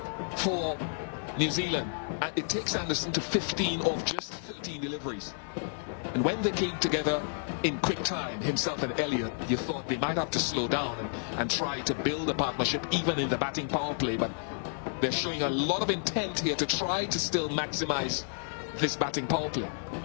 for New Zealand. And it takes Anderson to 15 of just 13 deliveries. And when they came together in quick time, himself and Elliott, you thought they might have to slow down and try to build a partnership even in the batting power play. But they're showing a lot of intent here to try to still maximize this batting power play.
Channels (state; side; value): silent; right; 57 dB below the other